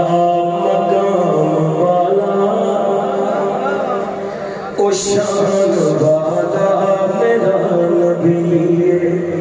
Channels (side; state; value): both; identical; correlation 1.00